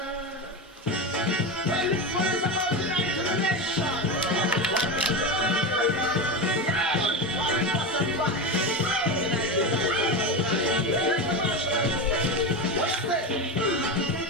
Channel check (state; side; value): normal; both; correlation 0.19